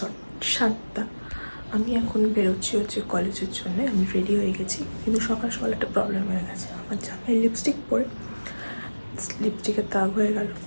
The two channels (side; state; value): both; inverted; correlation -1.00